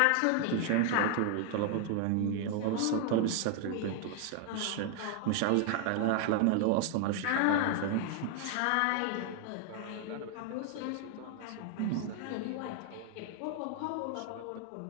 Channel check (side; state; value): both; different; correlation 0.00